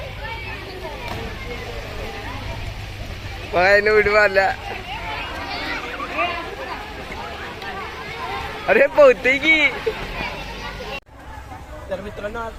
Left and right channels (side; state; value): both; identical; correlation 1.00